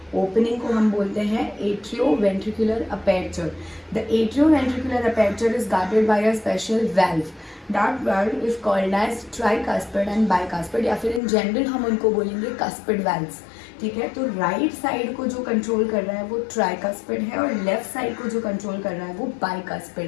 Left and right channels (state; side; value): drops out; right; at 11.2 s